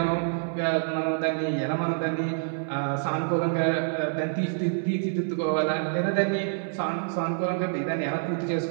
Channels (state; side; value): silent; left; 58 dB below the other